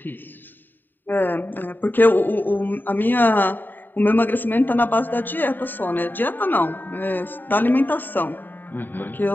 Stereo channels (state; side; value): late; right; 0.091 ms